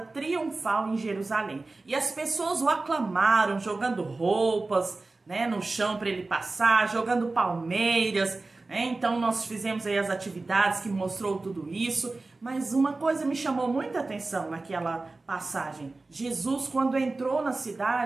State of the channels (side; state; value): left; quieter; 3.4 dB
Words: em Jerusalém. E as pessoas o aclamaram, jogando roupas, né, no chão para ele passar, jogando palmeiras. Então nós fizemos aí as atividades que mostrou tudo isso, mas uma coisa me chamou muita atenção naquela passagem. Jesus, quando entrou na